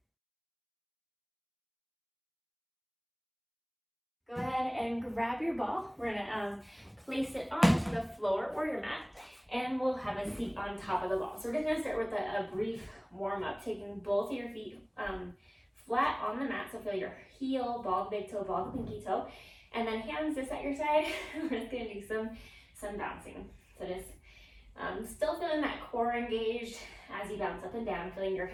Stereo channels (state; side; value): identical; both; correlation 1.00